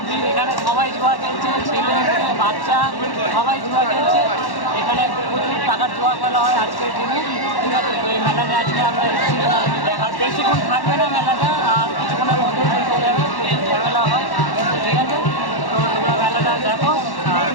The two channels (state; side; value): late; right; 1.1 ms